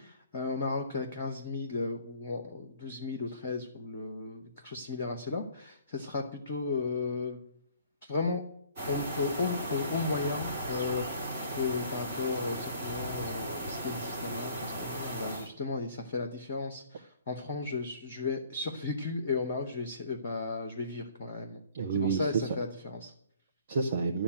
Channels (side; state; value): both; inverted; correlation -0.54